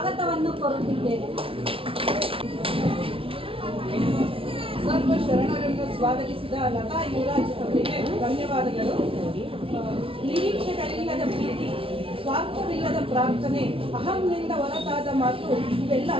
ಕೋರುತ್ತಿದ್ದೇವೆ. ಸರ್ವ ಶರಣರನ್ನು ಸ್ವಾಗತಿಸಿದ ಲತಾ ಯುವರಾಜ್ ಅವರಿಗೆ ಧನ್ಯವಾದಗಳು. ನಿರೀಕ್ಷೆಗಳಿಲ್ಲದ ಪ್ರೀತಿ, ಸ್ವಾರ್ಥವಿಲ್ಲದ ಪ್ರಾರ್ಥನೆ, ಅಹಂನಿಂದ ಹೊರತಾದ ಮಾತು ಇವೆಲ್ಲ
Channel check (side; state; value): left; late; 0.26 ms